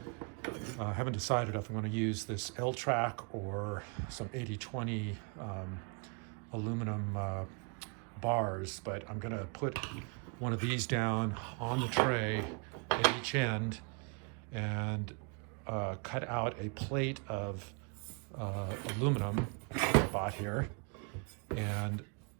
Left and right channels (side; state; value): left; quieter; 36.3 dB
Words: I haven't decided if I'm going to use this L-track or some 80/20 aluminum bars, but I'm going to put one of these down on the tray at each end and cut out a plate of aluminum I bought here and